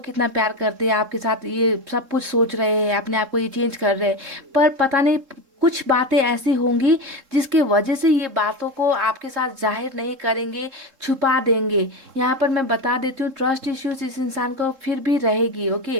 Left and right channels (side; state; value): left; late; 3.7 ms